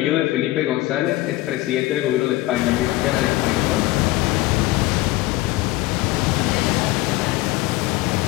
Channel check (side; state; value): right; quieter; 18.1 dB